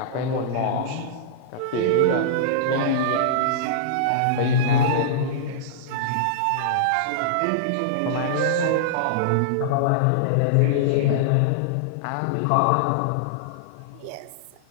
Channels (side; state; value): both; different; correlation -0.02